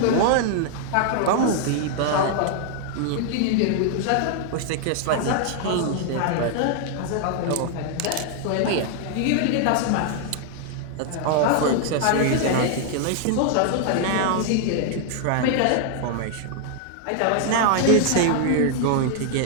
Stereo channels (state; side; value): different; both; correlation 0.00